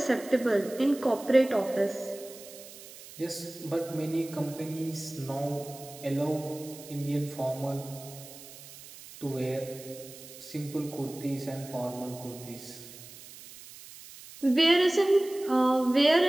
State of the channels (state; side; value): noise; right; hiss, 17 dB below the sound